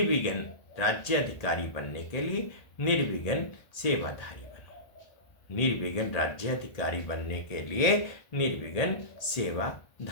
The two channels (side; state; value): right; late; 1.8 ms